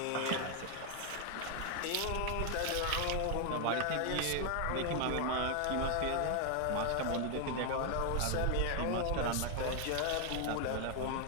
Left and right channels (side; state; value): both; different; correlation 0.00